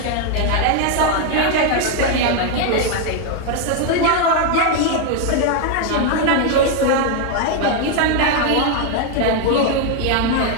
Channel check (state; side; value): different; both; correlation 0.01